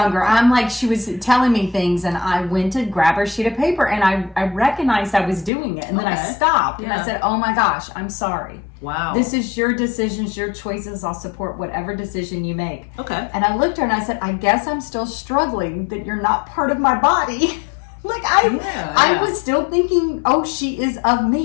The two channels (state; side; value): drops out; right; at 5.5 s